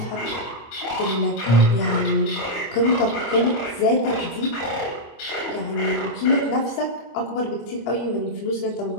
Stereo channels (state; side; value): late; right; 25 ms